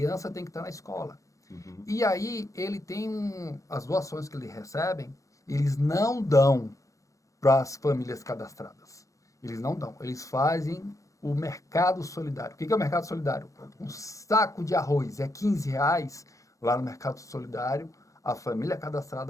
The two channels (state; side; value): late; right; 0.16 ms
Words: tem que estar na escola. E aí, ele tem as doações que eles recebem, eles não dão para as famílias cadastradas. Eles não dão, eles fazem o mercado solidário. O que é o mercado solidário? Um saco de arroz é R$15, lá no mercado solidário, a família